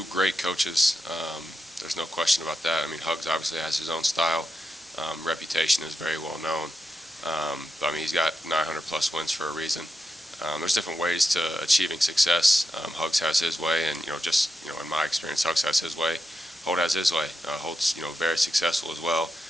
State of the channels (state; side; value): normal; both; correlation 0.87